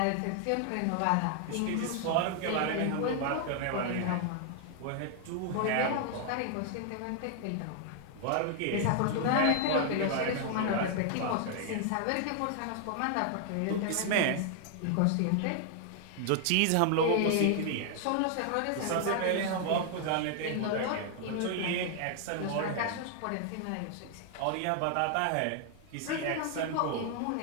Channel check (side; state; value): both; different; correlation 0.00